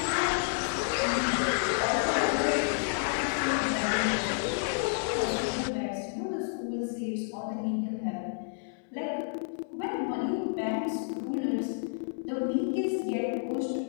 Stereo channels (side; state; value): right; silent; digital silence